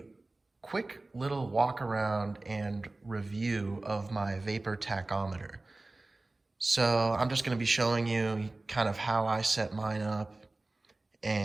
quick little walk around and review of my Vapor Tachometer. So I'm just going to be showing you kind of how I set mine up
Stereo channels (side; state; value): left; quieter; 3.0 dB